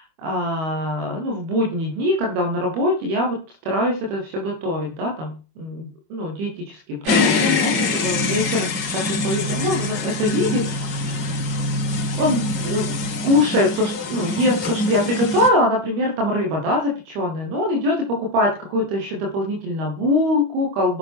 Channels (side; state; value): left; late; 25 ms